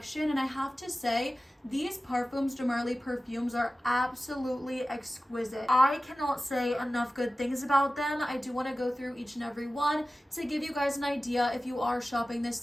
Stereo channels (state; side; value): normal; both; correlation 0.96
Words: and I have to say, these Parfums de Marly perfumes are absolutely exquisite. I cannot say enough good things about them. I do want to go through each and every one to give you guys an idea, if you are shopping this